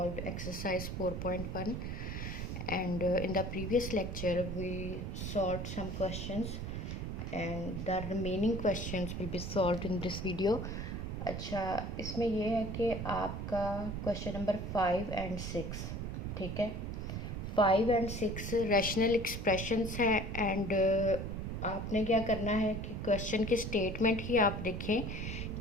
exercise 4.1, and in the previous lecture we solved some questions and the remaining questions will be solved in this video. अच्छा, इसमें ये है कि आपका क्वेश्चन नंबर 5 एंड 6, ठीक है। 5 एंड 6 रैशनल एक्सप्रेशंस हैं एंड आपने क्या करना है कि क्वेश्चन की स्टेटमेंट ही आप देखें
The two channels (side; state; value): right; noise; rumble, 4 dB below the sound